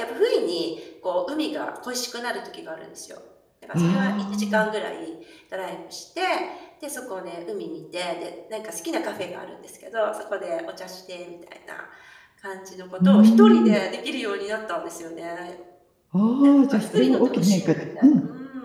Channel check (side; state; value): both; identical; correlation 1.00